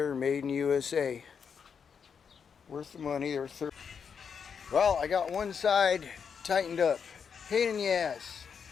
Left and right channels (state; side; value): quieter; right; 6.7 dB